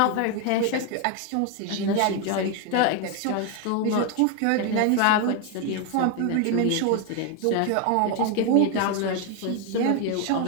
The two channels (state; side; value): different; both; correlation 0.01